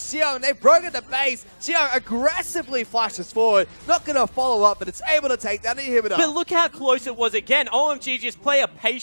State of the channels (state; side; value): inverted; both; correlation -1.00